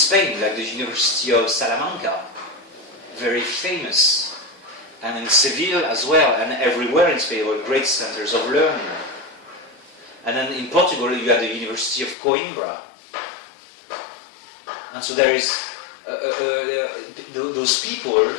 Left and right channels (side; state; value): right; drops out; at 12.2 s